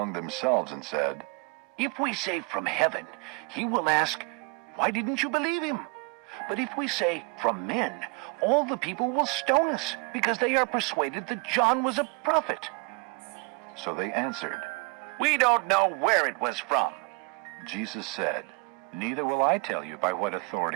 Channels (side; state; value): left; quieter; 30.6 dB